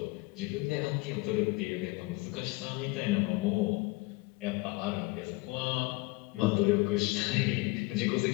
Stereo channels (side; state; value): right; quieter; 23.5 dB